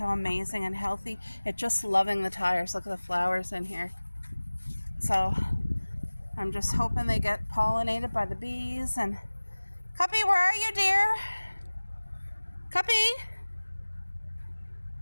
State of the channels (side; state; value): both; inverted; correlation -1.00